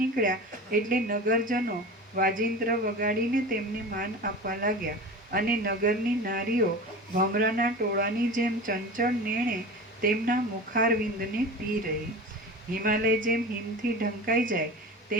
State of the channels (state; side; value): normal; both; correlation 0.32